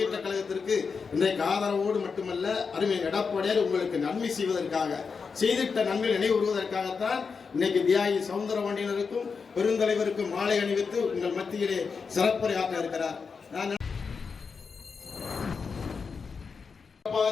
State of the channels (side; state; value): right; quieter; 5.4 dB